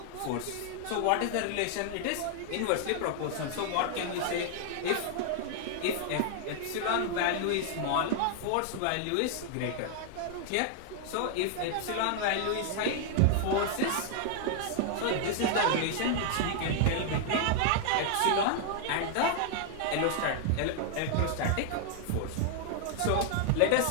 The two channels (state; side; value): different; both; correlation 0.00